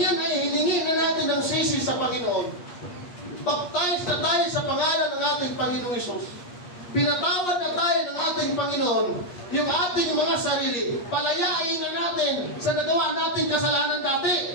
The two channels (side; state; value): right; late; 8.5 ms